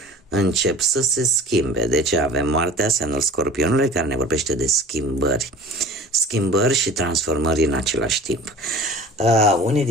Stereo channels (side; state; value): both; normal; correlation 0.41